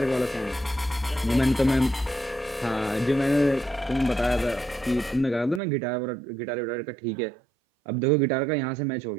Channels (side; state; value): left; drops out; at 5.6 s